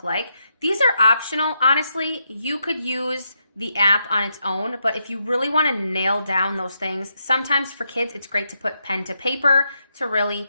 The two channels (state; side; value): inverted; both; correlation -0.82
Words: like. These are optional. Honestly, you could use the app on its own, but if you really want to nail down those things, sometimes for kids, it's great to put pen to paper to really